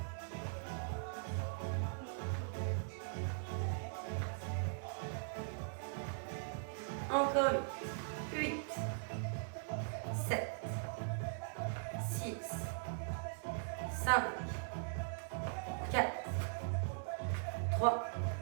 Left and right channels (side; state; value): left; silent; 51 dB below the other